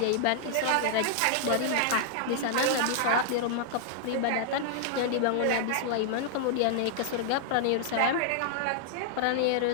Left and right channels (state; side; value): different; both; correlation -0.01